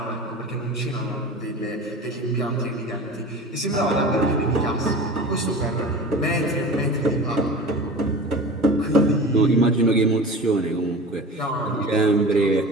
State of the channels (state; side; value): normal; both; correlation 0.35